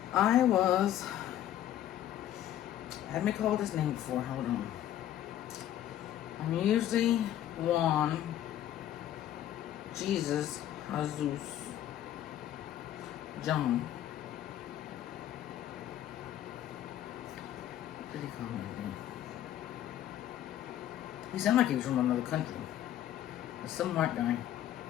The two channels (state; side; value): quieter; right; 11.9 dB